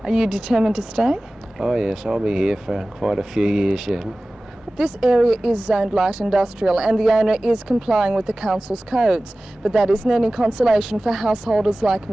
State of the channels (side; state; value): both; normal; correlation 0.97